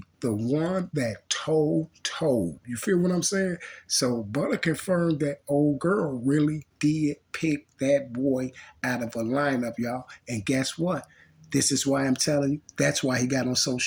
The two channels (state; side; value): identical; both; correlation 1.00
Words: The one that told. You feel what I'm saying? So Butta confirmed that old girl really did pick that boy out of a lineup, y'all. And guess what? This is why I'm telling you, that's why he got on